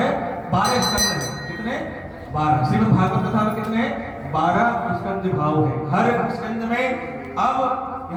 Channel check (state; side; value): identical; both; correlation 1.00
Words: स्कंद हैं। कितने? 12। श्रीमद् भागवत कथा में कितने? 12 स्कंद भाव है। हर स्कंद में अब